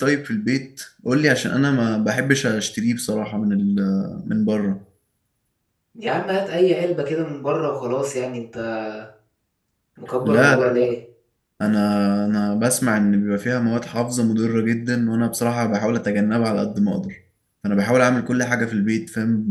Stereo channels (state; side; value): identical; both; correlation 1.00